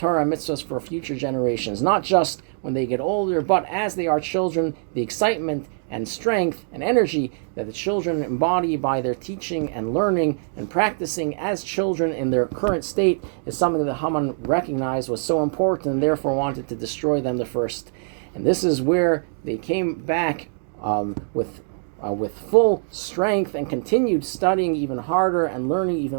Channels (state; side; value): silent; left; 63 dB below the other